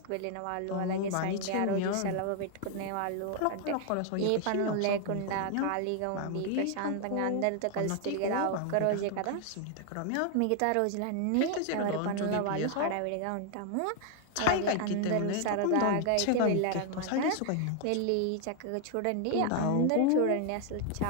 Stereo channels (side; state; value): both; different; correlation 0.00